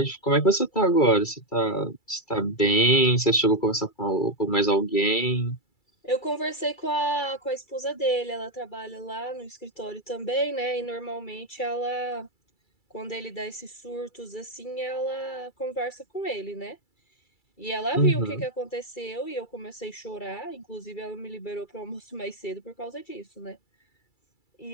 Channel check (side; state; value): right; late; 2.3 ms